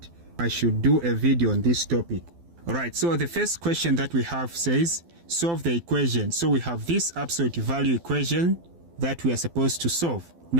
I should do a video on this topic. Alright, so the first question that we have says, solve the equation. So we have this absolute value equation that we are supposed to solve.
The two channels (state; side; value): late; left; 12 ms